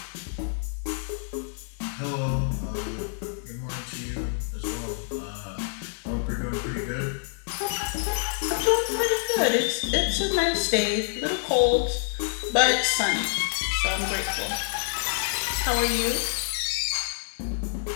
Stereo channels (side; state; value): right; silent; digital silence